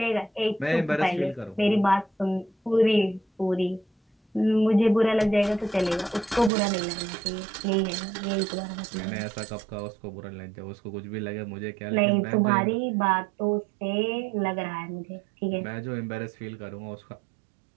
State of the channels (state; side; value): drops out; left; at 6.5 s